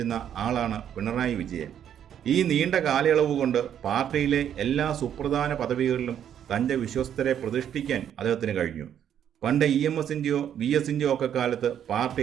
ആളാണ് പിണറായി വിജയൻ. ഈ നീണ്ട കാലയളവ് കൊണ്ട് പാർട്ടിയിലെ എല്ലാ സുപ്രധാന പദവികളിലും തൻ്റെ വിശ്വസ്തരെ പ്രതിഷ്ഠിക്കാൻ അദ്ദേഹത്തിന് കഴിഞ്ഞു. പണ്ട് EMS-ൻ്റെയോ VS-ൻ്റെയോ ഒക്കെ കാലത്ത്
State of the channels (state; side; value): quieter; left; 9.6 dB